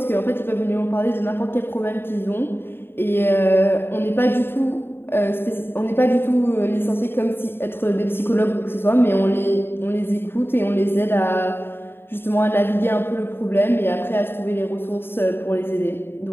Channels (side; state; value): right; late; 0.11 ms